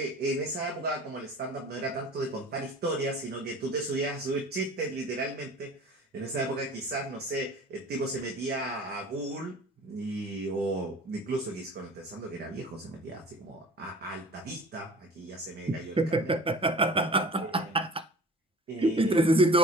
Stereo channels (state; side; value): normal; both; correlation 0.44